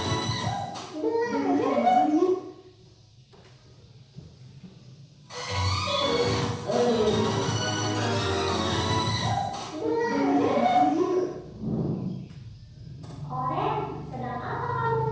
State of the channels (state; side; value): identical; both; correlation 1.00